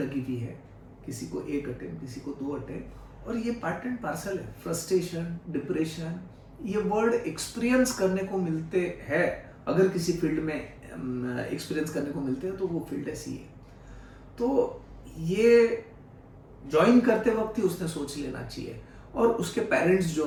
हुई है, किसी को 1 अटेम्प्ट, किसी को 2 अटेम्प्ट, और ये पार्ट एंड पार्सल है। फ्रस्ट्रेशन, डिप्रेशन, ये वर्ड एक्सपीरियंस करने को मिलते हैं। अगर किसी फील्ड में एक्सपीरियंस करने को मिलते हैं तो वो फील्ड है सीए। तो ये ज्वाइन करते वक्त ही उसने सोच लेना चाहिए, और उसके पेरेंट्स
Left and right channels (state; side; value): identical; both; correlation 1.00